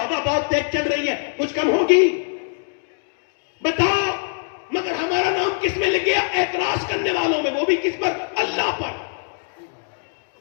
बहुत तेज चल रही है, कुछ कम होगी? बताओ। मगर हमारा नाम किस में लग गया? एतराज करने वालों में, वो भी किस पर? अल्लाह पर।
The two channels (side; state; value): right; silent; 61 dB below the other